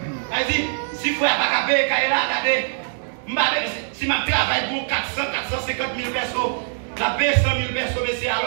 Il dit, si vous n'avez pas payé, regardez, si je travaille pour 450 000 personnes, la paye 100 000 personnes, mais c'est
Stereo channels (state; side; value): silent; left; digital silence